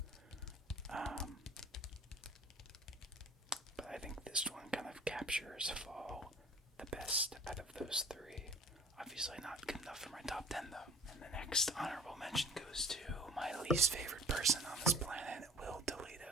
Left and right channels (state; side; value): normal; both; correlation 0.46